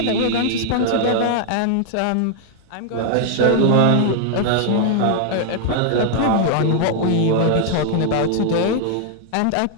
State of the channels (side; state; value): both; different; correlation 0.00